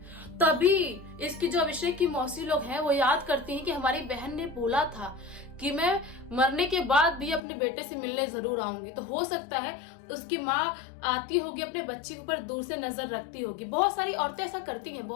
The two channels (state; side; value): drops out; right; at 7.4 s